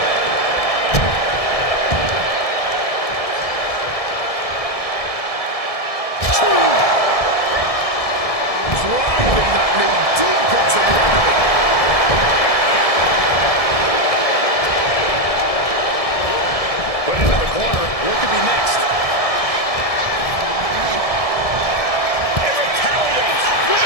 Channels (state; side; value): late; right; 1.7 ms